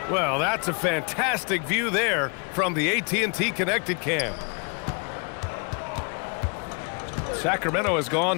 Well, that's a fantastic view there from the AT&T Connected Cam. Sacramento has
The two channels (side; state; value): right; quieter; 36.0 dB